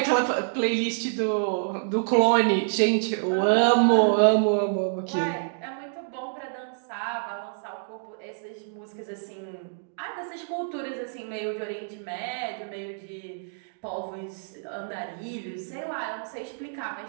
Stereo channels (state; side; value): silent; left; digital silence